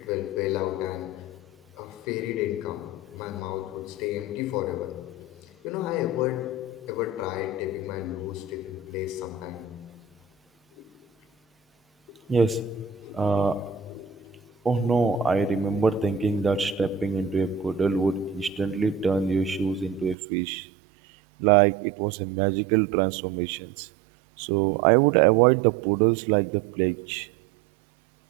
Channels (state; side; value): drops out; left; at 20.2 s